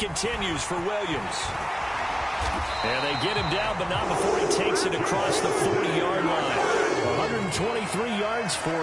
for Williams. And they get him down, but not before he takes it across the 40-yard line. 123 yards for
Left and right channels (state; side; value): identical; both; correlation 1.00